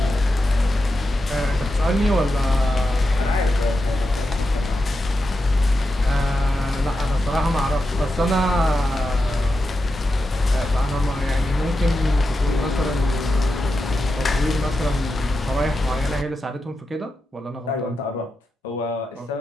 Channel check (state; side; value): normal; both; correlation 0.89